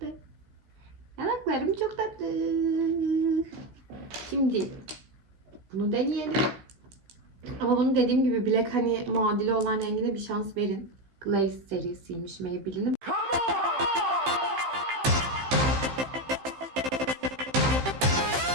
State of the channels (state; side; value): late; left; 15 ms